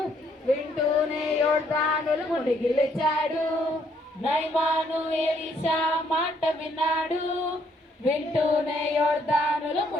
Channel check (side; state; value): both; normal; correlation 0.69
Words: వింటూనే యోర్దానులో మునిగి లేచాడు. నయమాను ఎలీషా మాట విన్నాడు, వింటూనే యోర్దానులో